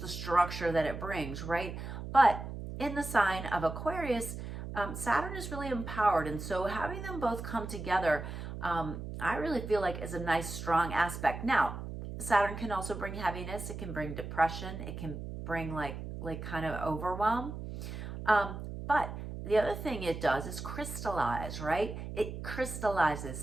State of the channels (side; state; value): right; noise; hum, 8 dB below the sound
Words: structure that it brings, right? But in the sign of Aquarius, Saturn is really empowered. And so having them both come together, I really feel like is a nice, strong aspect. Now, Saturn can also bring heaviness. It can bring depression. It can bring like kind of overwhelm. But the other thing it does is crystallize, right? It crystallizes